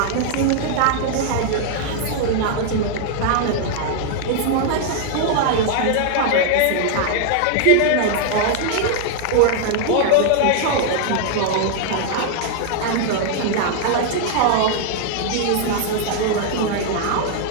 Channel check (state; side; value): different; both; correlation -0.01